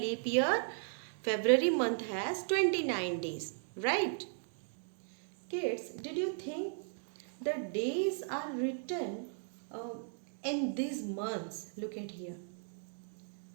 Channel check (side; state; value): left; silent; digital silence